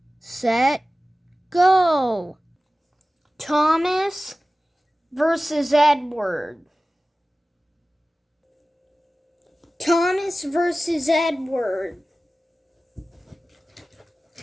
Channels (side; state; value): both; normal; correlation 0.96